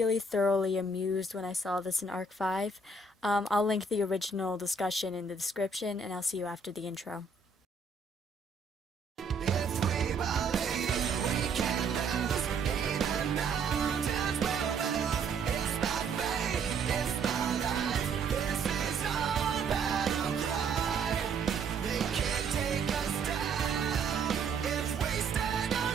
thoroughly amused when I saw this in Arc 5. I'll link the original discussion in the description, and I'll see you after the intro.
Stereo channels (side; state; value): left; quieter; 4.1 dB